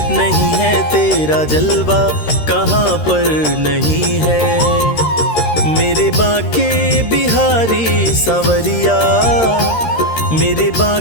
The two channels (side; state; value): right; late; 13 ms